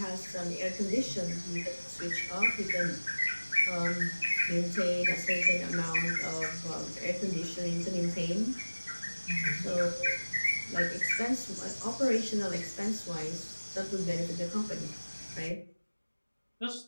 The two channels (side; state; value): both; inverted; correlation -1.00